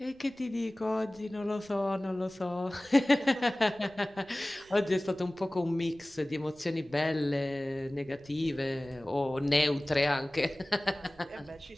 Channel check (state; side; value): noise; right; rumble, 29 dB below the sound